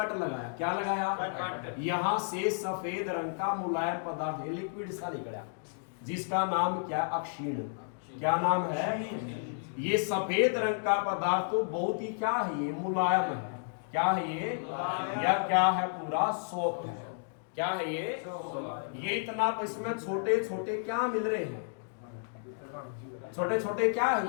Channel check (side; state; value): right; silent; digital silence